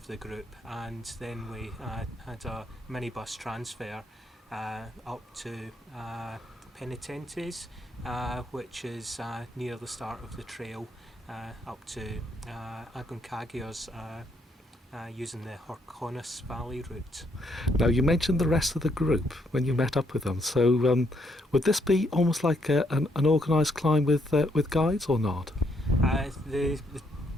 the group, and then we had a minibus transfer up to Penitentes, which is near the start of the trail, up to Aconcagua's using the Horcones Valley route. Now, you mentioned the rest of the group when you met up with them. So would this be almost like an organised climb with guides or not? The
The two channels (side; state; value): both; normal; correlation 0.73